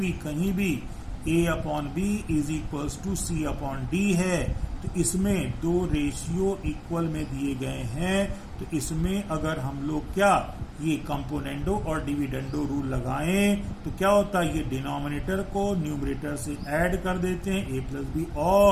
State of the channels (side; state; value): both; identical; correlation 1.00